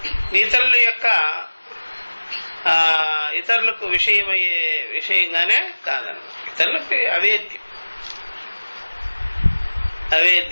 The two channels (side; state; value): both; inverted; correlation -1.00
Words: ఇతరుల యొక్క ఇతరులకు విషయమయ్యే విషయంగానే కాదన్నమాట. ఇతరులకు